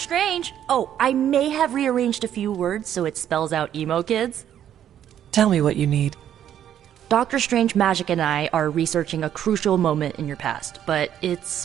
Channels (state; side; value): quieter; left; 10.4 dB